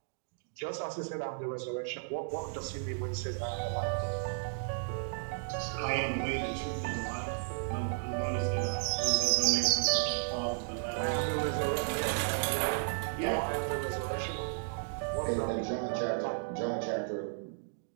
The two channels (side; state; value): left; silent; digital silence